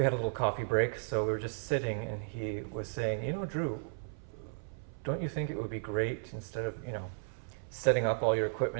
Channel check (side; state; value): left; silent; 55 dB below the other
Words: had a little coffee break, so we were just sitting, and he was saying, Drew, don't you think it would be great, instead of, setting up all your